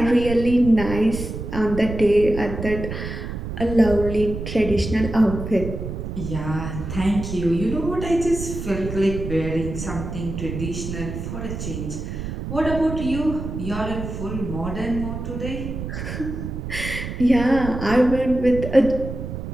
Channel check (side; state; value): right; noise; rumble, 6 dB below the sound